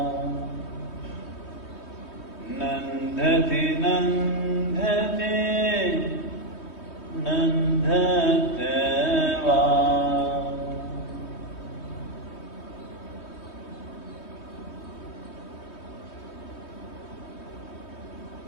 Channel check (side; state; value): right; late; 3.2 ms